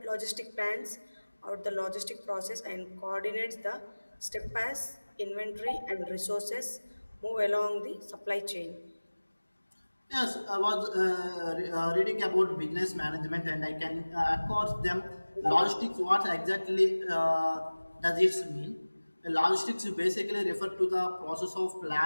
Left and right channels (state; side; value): inverted; both; correlation -1.00